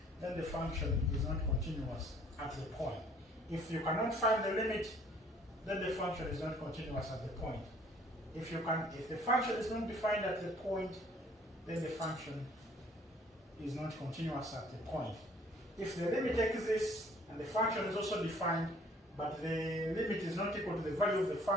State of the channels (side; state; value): both; normal; correlation 0.57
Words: then the function is not continuous at the point. If you cannot find the limit, then the function is not continuous at the point. If the function is not defined at the point, then the function is not continuous at the point. If the limit exists and the function is also defined, but the limit is not equal to the value of the